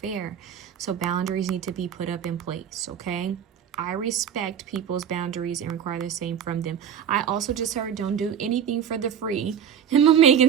So boundaries need to be put up in place, okay? I respect people's boundaries and require the same from them. I also just heard don't do anything for the free. And my Megan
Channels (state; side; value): quieter; left; 8.6 dB